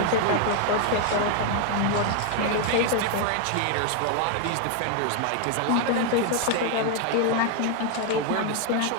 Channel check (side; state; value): both; different; correlation 0.01